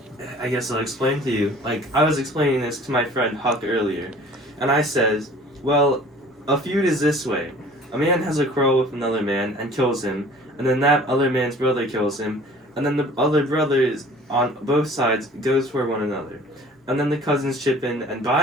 I guess I'll explain to you. I was explaining this to my friend Huck earlier, and I says, well, a feud is this way. A man has a quarrel with another man and kills him, and then that other man's brother kills him, and then the other brothers on both sides goes for one another. And then the cousins chip in, and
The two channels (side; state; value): both; normal; correlation 0.48